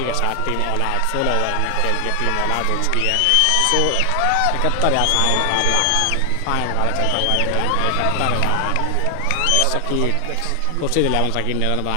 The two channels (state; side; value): different; both; correlation 0.00